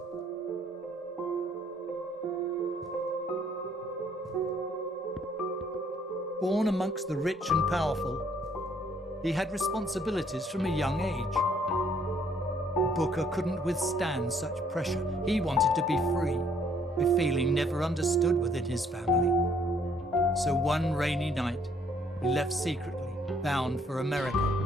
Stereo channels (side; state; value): both; normal; correlation 0.65